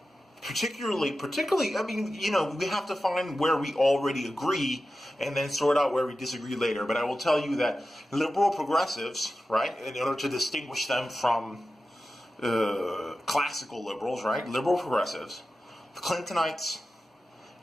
Particularly, we have to find where we already agree and then sort out where we disagree later. But I will tell you that liberal progressives, right, in order to distinguish them from classical liberals, right, liberal progressives, Clintonites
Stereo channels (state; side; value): normal; both; correlation 0.93